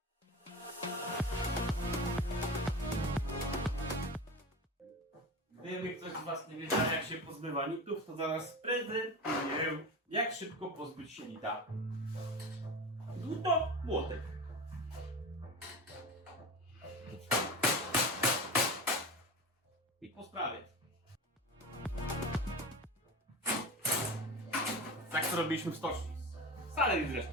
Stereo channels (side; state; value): both; normal; correlation 0.28